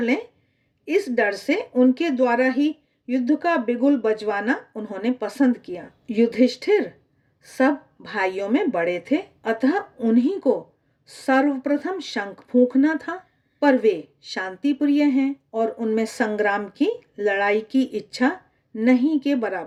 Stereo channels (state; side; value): identical; both; correlation 1.00